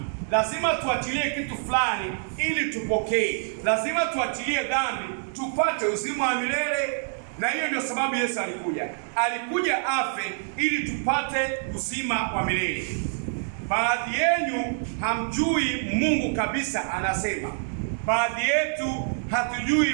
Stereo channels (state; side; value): silent; left; digital silence